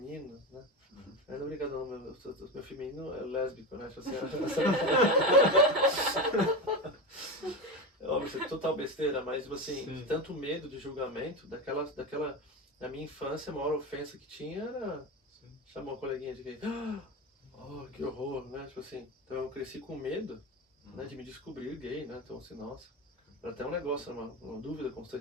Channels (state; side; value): normal; both; correlation 0.20